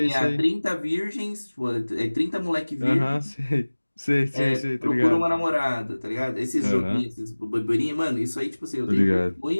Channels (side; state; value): both; inverted; correlation -1.00